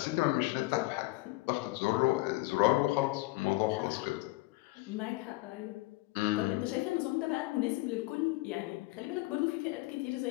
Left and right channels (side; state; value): right; quieter; 20.9 dB